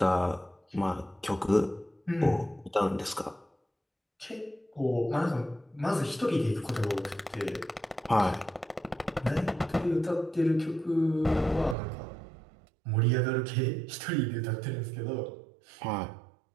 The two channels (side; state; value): left; drops out; at 11.8 s